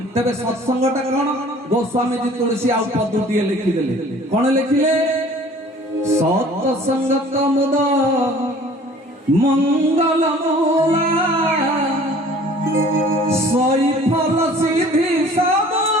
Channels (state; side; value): normal; both; correlation 0.50